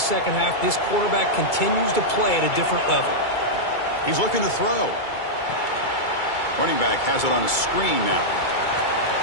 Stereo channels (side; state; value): right; late; 2.3 ms